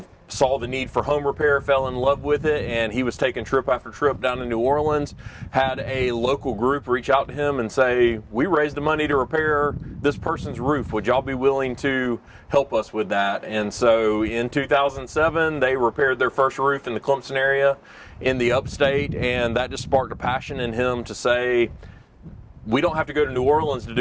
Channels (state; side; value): identical; both; correlation 1.00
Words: saw the need for home repair, fell in love with it, and he was taking trip after trip down to New Orleans, had a local group reach out to him and say, we raised the money to repair this person's roof. Would y'all be willing to help us with that? And so in 2007, they repaired their first roof in the Clemson area in the Upstate, and that just sparked a passion in him to say, we don't have to go to New Orleans to